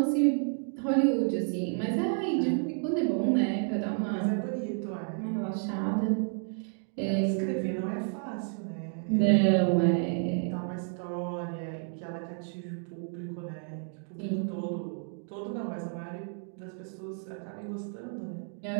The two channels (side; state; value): left; silent; 57 dB below the other